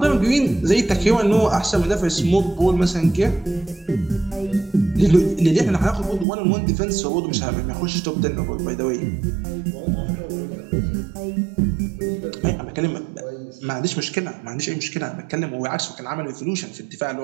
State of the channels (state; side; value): drops out; left; at 6.2 s